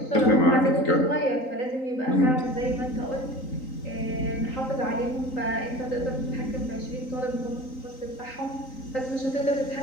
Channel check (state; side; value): late; right; 3.9 ms